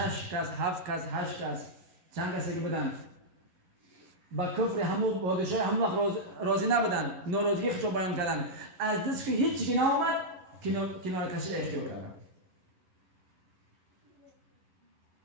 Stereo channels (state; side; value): late; left; 11 ms